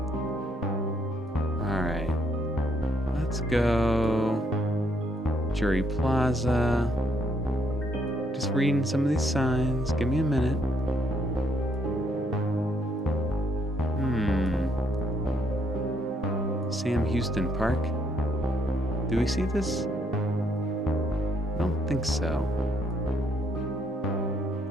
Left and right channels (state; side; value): normal; both; correlation 0.69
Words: Alright. Let's go Jury Plaza. Just reading some of these signs. Give me a minute. Sam Houston Park. Do we see this? I don't think so.